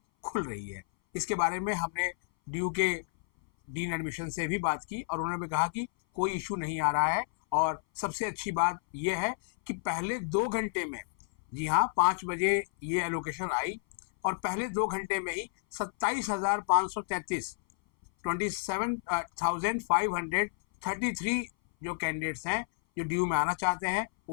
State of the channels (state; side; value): silent; right; 57 dB below the other